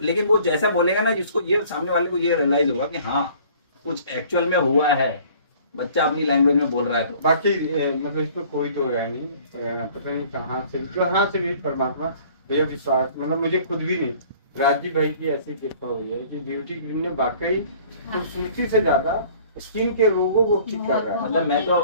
लेकिन वो जैसा बोलेगा ना, जिसको ये सामने वाले को ये रियलाइज होगा कि हाँ कुछ एक्चुअल में हुआ है, बच्चा अपनी लैंग्वेज में बोल रहा है। तो बाकी मतलब इसमें कोई तो रहा नहीं, पता नहीं कहाँ से भी परमात्मा भैया विश्वास, मतलब मुझे खुद भी नहीं, राजीव भाई की ऐसी कृपा हुई है कि ब्यूटी क्रीम ने वाकई खूबसूरती से ज्यादा स्किन के रोगों को ठीक कर रहा है। मतलब मैं तो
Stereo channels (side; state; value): both; inverted; correlation -0.52